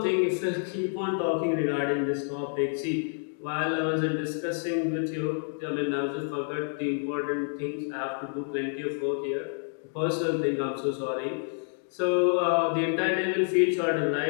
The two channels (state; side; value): silent; right; 59 dB below the other